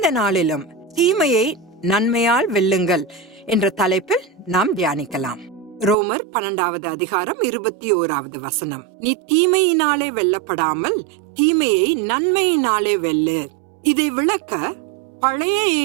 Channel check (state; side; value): drops out; left; at 6.0 s